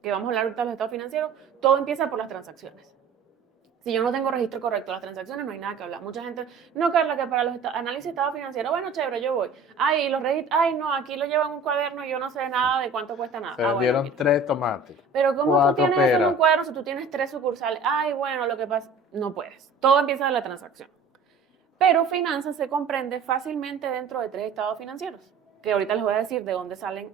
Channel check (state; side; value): quieter; left; 4.0 dB